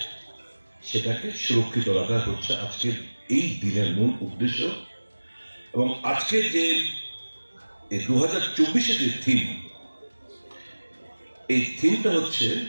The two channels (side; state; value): both; inverted; correlation -1.00